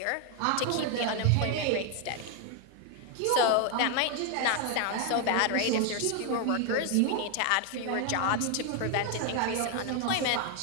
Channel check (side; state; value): both; different; correlation 0.01